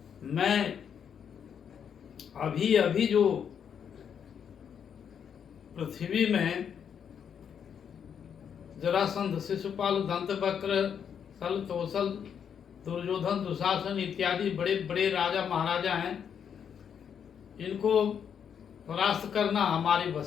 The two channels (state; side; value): quieter; right; 7.8 dB